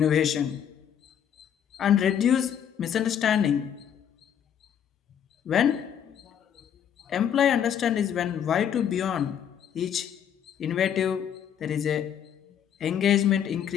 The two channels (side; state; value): right; quieter; 9.0 dB